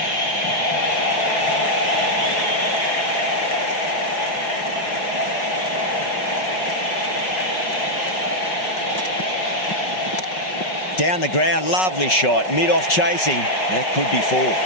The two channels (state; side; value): late; right; 5.4 ms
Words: Down the ground, lovely shot. Mid-off chasing. That could be 4.